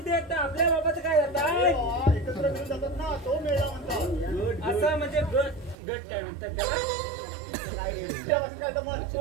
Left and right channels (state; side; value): drops out; left; at 5.8 s